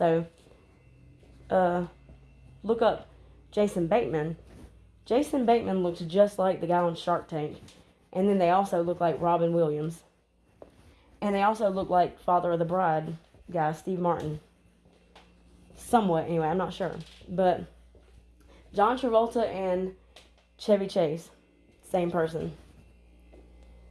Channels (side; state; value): both; identical; correlation 1.00